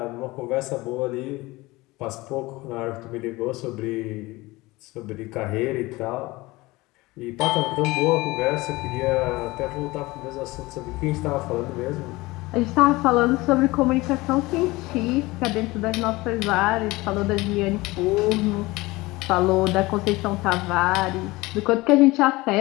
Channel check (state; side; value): quieter; right; 21.1 dB